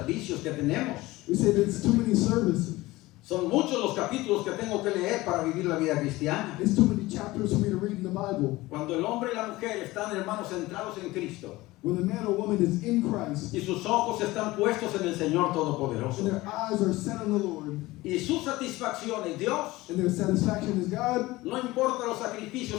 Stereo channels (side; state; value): right; quieter; 19.3 dB